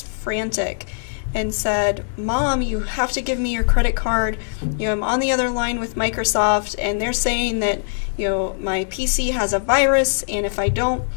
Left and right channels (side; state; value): right; silent; digital silence